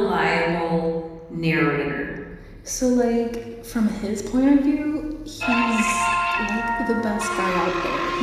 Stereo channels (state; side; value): identical; both; correlation 1.00